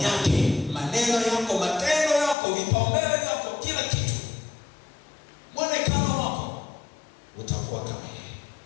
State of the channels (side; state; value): right; drops out; at 2.4 s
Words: yake, maneno yako, matendo yako, vipaumbele vyako, kila kitu, mwonekano wako utakuwa kama yeye.